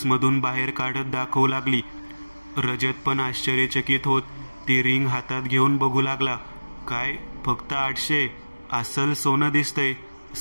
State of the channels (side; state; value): both; inverted; correlation -1.00